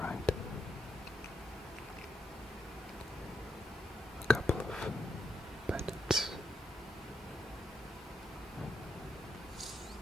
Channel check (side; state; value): both; normal; correlation 0.80